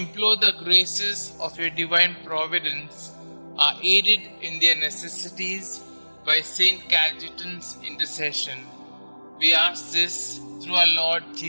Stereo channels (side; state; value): both; inverted; correlation -1.00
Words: the graces of your divine providence are aided in their necessities by St Cajetan's intercession. We ask this through our Lord